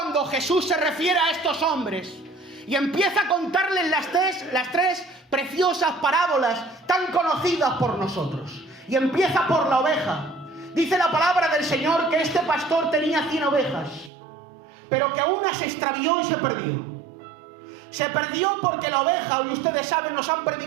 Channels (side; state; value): left; drops out; at 14.1 s